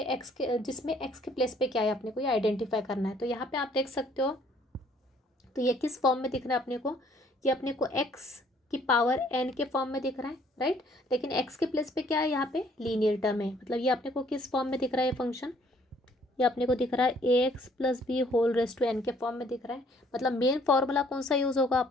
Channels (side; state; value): both; normal; correlation 0.62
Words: x के, जिसमें x के प्लेस पे क्या है, अपने को ये आइडेंटिफाई करना है। तो यहाँ पे आप देख सकते हो, तो ये किस फॉर्म में दिख रहा है अपने को, ये अपने को x की पावर n के फॉर्म में दिख रहा है, राइट। लेकिन x के प्लेस पे क्या है, यहाँ पे लीनियर टर्म है, मतलब ये अपने को किस फॉर्म में दिख रहा है, ये फंक्शन ये अपने को दिख रहा है ax + b whole raise to n के फॉर्म में दिख रहा है। मतलब मेन फार्मूला कौन सा यूज़ होगा,